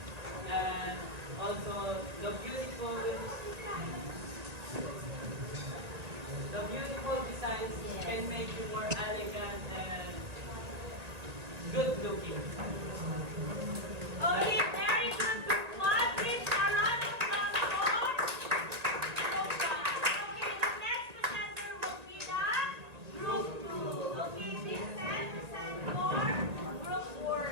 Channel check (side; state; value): left; late; 1.9 ms